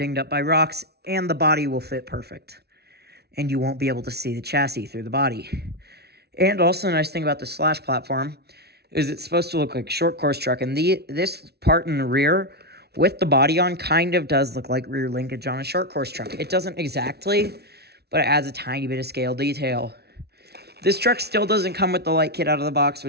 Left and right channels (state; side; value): late; left; 0.48 ms